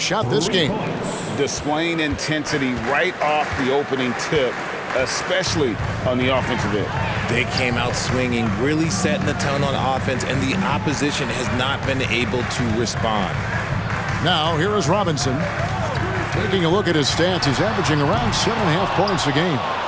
shot this game. Displaying intensity right off the opening tip, especially on the offensive end. They came out swinging, really setting the tone on offense, and the opposition has not been able to respond. Now, here is Robinson. Taking a look at his stats, he's averaging around 7.5 points a game.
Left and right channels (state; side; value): identical; both; correlation 1.00